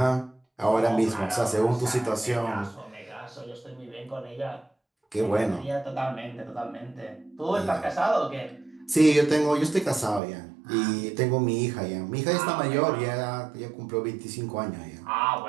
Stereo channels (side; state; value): left; drops out; at 10.2 s